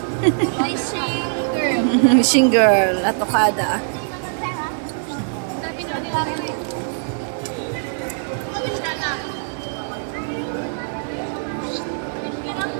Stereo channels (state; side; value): silent; left; digital silence